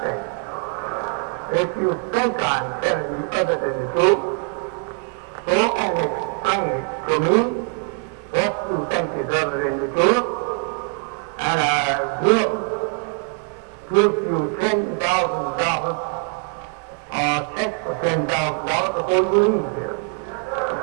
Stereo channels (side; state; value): left; quieter; 39.0 dB